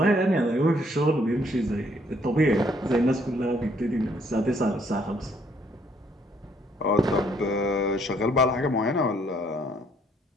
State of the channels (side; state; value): both; normal; correlation 0.67